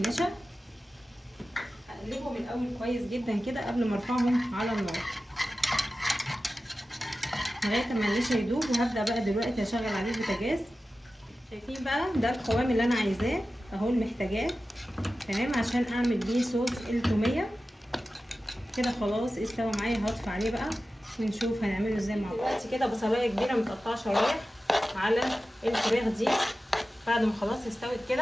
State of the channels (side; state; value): both; normal; correlation 0.94